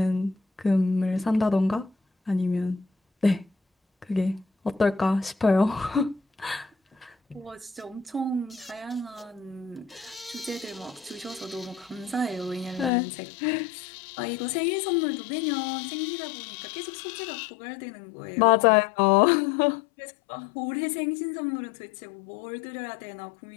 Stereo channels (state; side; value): drops out; right; at 12.9 s